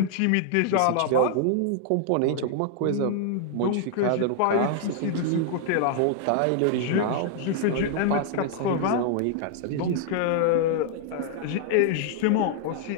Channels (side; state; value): both; different; correlation -0.01